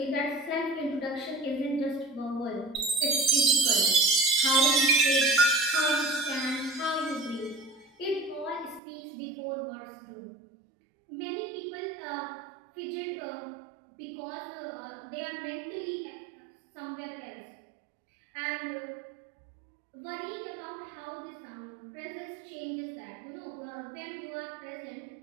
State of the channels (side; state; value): left; drops out; at 8.8 s